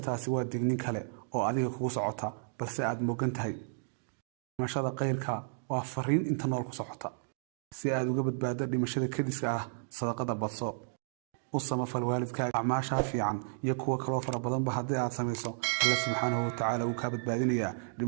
taasi waa dignin kale oo adiga kugu socota balse aad moogan tahay. dhimashada qayrka waa fariin inta nool ku socota. si aad uga badbaado dhimashada kadiska ah sadaqada badso. u samafal waalidkaaga acmaasha fiican iyo kuwa kale fara badanba haddii aad samayso Allah subhanahu wa ta'ala uu ka badbaadinayaa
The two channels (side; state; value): left; silent; digital silence